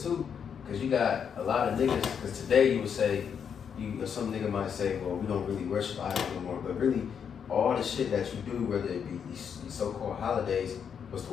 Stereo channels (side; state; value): right; quieter; 7.4 dB